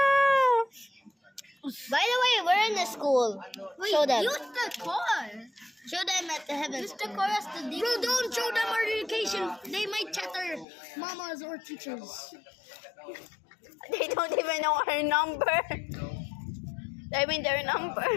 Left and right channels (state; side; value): drops out; right; at 10.7 s